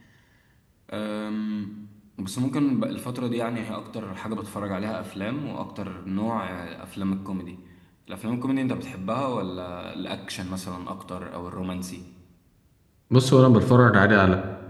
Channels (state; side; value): identical; both; correlation 1.00